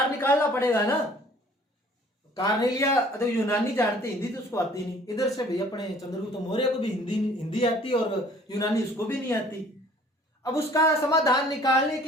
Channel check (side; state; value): both; normal; correlation 0.54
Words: निकालना पड़ेगा ना। कार्नेलिया तो यूनानी जानते, हिंदी तो उसको आती नहीं। इधर से भाई अपने चंद्रगुप्त मौर्य को भी हिंदी आती और यूनानी उसको भी नहीं आती। अब उसका समाधान निकालने